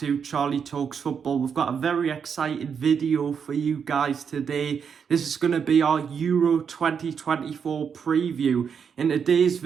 Charlie Talks Football. We've got a very exciting video for you guys today. This is going to be our Euro 2024 preview. In today's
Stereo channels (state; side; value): quieter; left; 6.8 dB